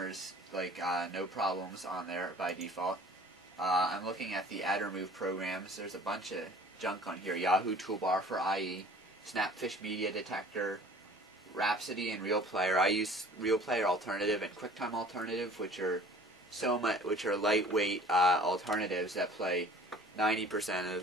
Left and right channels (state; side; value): normal; both; correlation 0.49